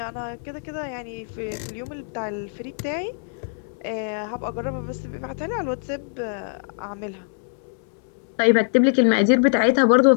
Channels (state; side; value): silent; right; 63 dB below the other